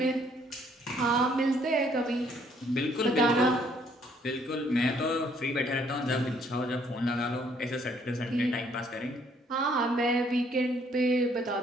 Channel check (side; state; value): both; normal; correlation 0.65